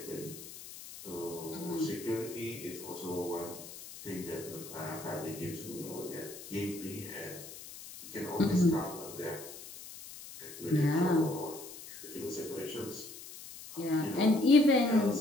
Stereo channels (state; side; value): noise; left; hiss, 14 dB below the sound